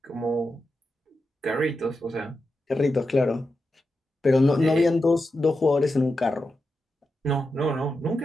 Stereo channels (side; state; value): both; normal; correlation 0.89